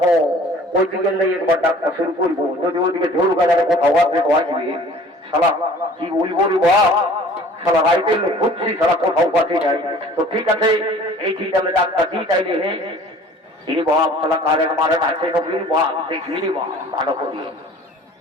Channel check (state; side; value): normal; both; correlation 0.49